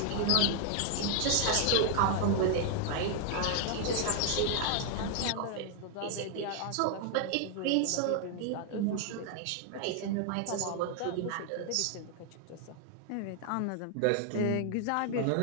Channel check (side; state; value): both; different; correlation 0.00